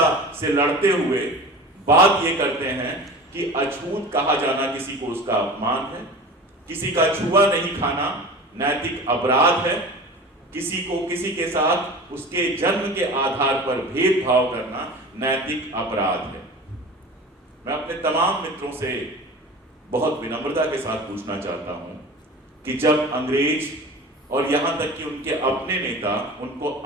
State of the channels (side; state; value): both; normal; correlation 0.36